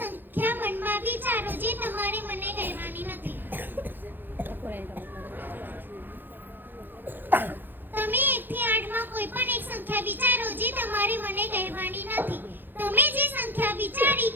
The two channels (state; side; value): late; left; 0.093 ms